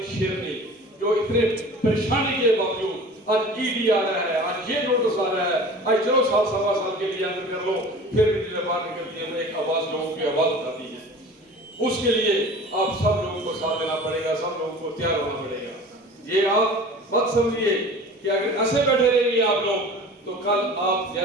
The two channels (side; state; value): both; normal; correlation 0.40